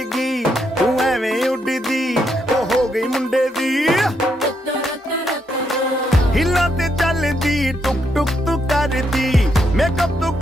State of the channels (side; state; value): both; normal; correlation 0.78